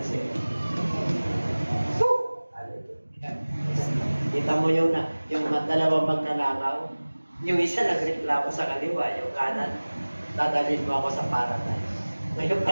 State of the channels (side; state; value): both; inverted; correlation -1.00